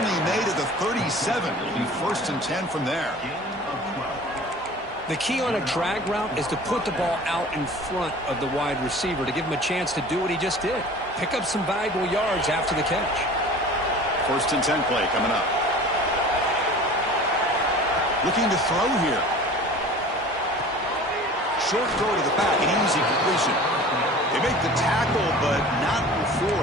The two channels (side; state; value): both; normal; correlation 0.42